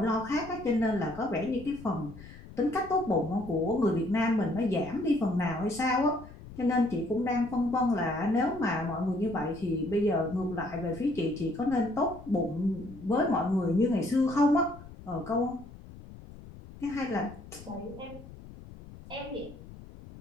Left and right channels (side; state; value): left; noise; rumble, 17 dB below the sound